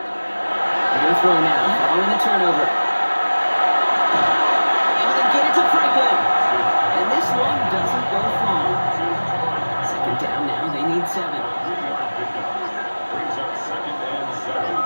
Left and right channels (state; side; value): inverted; both; correlation -1.00